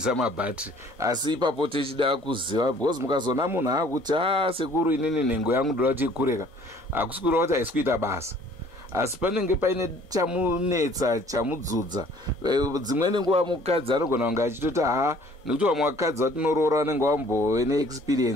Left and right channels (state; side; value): normal; both; correlation 0.55